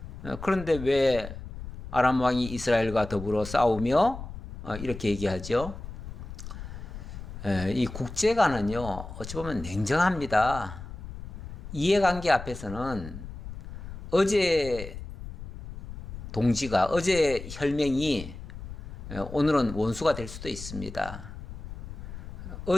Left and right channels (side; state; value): left; noise; rumble, 11 dB below the sound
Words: 그런데 왜 아람 왕이 이스라엘과 더불어 싸우며 이렇게 얘기하죠? 이 국제관은요, 어찌 보면 냉정합니다. 이해관계 앞에서는 어제 동지가, 어제 혈맹이 오늘은 원수가 될 수도 있습니다.